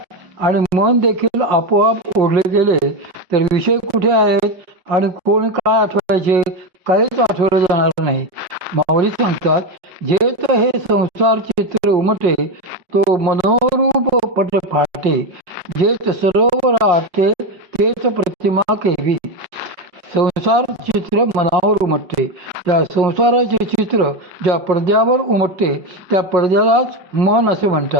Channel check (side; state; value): left; late; 5.1 ms